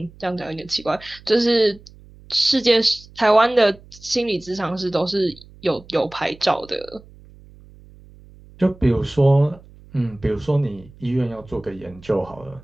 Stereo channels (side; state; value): right; noise; hum, 23 dB below the sound